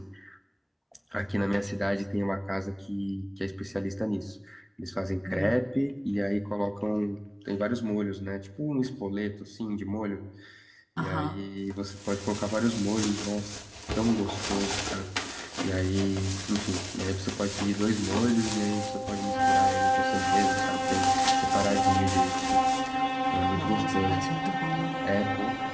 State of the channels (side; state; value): both; identical; correlation 1.00